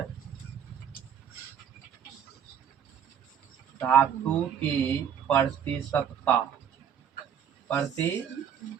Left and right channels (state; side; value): quieter; left; 8.5 dB